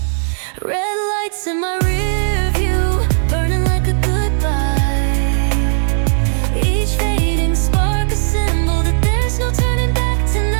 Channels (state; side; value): silent; left; digital silence